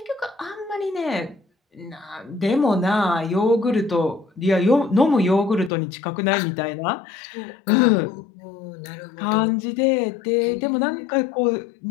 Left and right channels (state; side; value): drops out; right; at 5.7 s